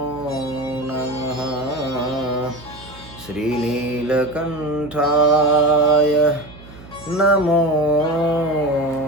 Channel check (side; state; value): right; noise; hum, 19 dB below the sound